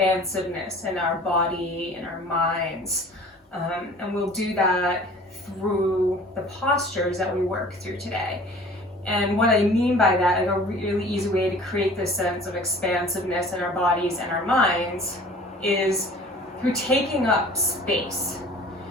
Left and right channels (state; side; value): normal; both; correlation 0.47